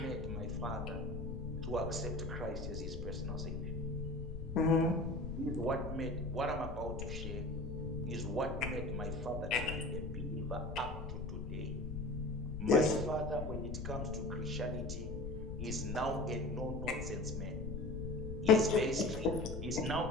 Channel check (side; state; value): left; noise; rumble, 6 dB below the sound